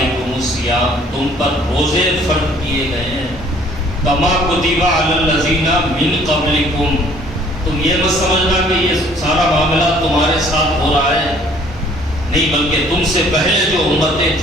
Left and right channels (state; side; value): normal; both; correlation 0.57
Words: الصیام، تم پر روزے فرض کیے گئے ہیں، کما کتب علی الذین من قبلکم، تم یہ مت سمجھنا کہ یہ سارا معاملہ تمہارے ساتھ ہو رہا ہے، نہیں بلکہ تم سے پہلے جو امتیں